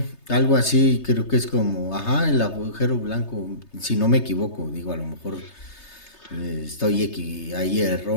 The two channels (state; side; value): late; right; 3.3 ms